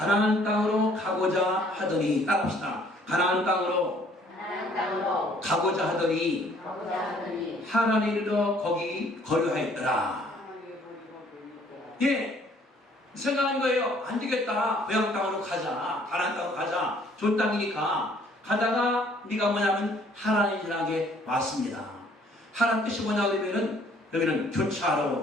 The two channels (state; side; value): normal; both; correlation 0.60